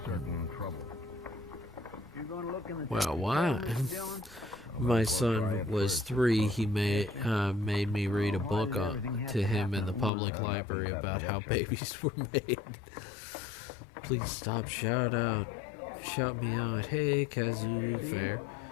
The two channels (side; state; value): right; drops out; at 10.1 s